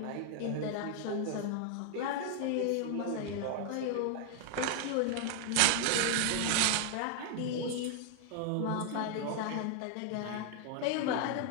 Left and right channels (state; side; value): different; both; correlation 0.00